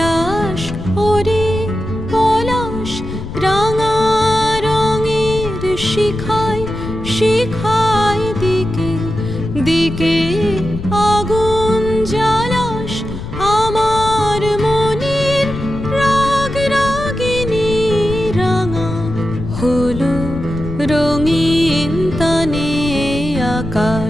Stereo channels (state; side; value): noise; left; rumble, 9 dB below the sound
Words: ওরে পলাশ, রাঙা রঙের শিখায় শিখায় দিকে দিকে আগুন জ্বালাস আমার মনের রাগ রাগিনী রাঙা হলো রঙিন তানে